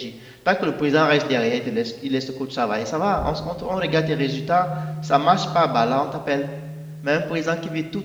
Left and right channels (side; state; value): both; identical; correlation 1.00